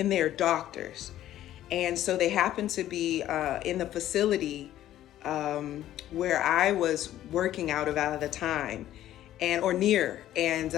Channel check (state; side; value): quieter; right; 12.9 dB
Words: they're doctors. And so they happened to be in the facility where I was working out of at the time, and or near. And